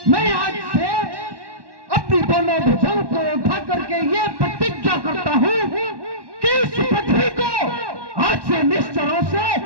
मैं आज से अपनी दोनों भुजाओं को उठा करके ये प्रतिज्ञा करता हूँ कि इस पृथ्वी को आज से निश्चरों से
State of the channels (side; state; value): left; late; 1.1 ms